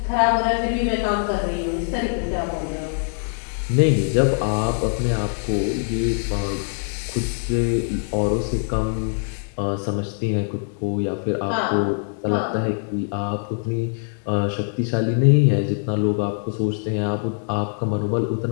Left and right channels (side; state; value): right; silent; digital silence